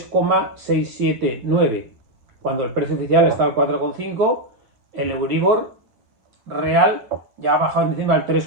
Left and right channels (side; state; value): left; late; 9.1 ms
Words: cuando el precio oficial está al 4,5, el Euribor real ya ha bajado en diciembre al